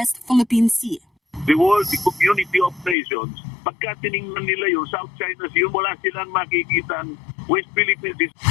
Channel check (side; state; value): right; drops out; at 3.0 s